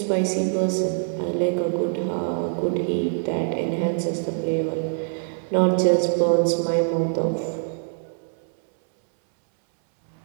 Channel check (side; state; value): left; silent; 63 dB below the other